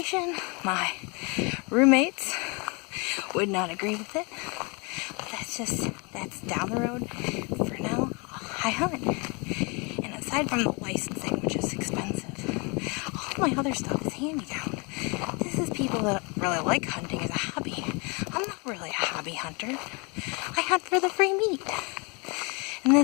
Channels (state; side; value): quieter; right; 30.4 dB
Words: My roommates would not agree with it. But that's down the road. For now, I hunt. And aside from the licensing, which is expensive, all my other stuff is hand-me-down. This is people that really like hunting as a hobby. I'm not really a hobby hunter. I hunt for the free meat. And